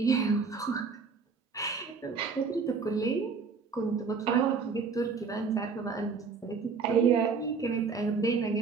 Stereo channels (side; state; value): left; quieter; 5.2 dB